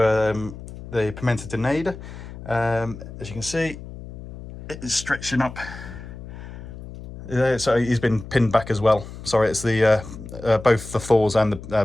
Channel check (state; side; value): noise; left; hum, 13 dB below the sound